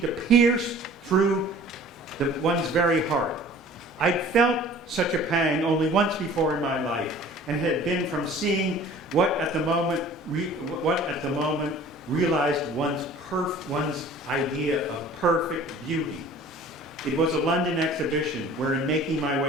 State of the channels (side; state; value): both; normal; correlation 0.47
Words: to pierce through one's very heart. I'd felt such a pang only once before in my life, and it had been from seeing what at the moment realized one's idea of perfect beauty. It was a London exhibition where, in making my